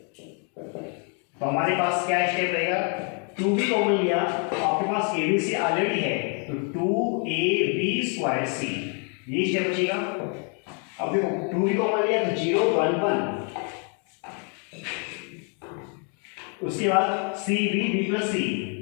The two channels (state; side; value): quieter; right; 39.2 dB